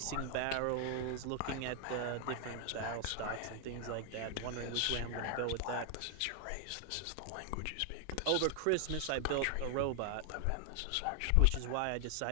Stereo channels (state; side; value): different; both; correlation 0.00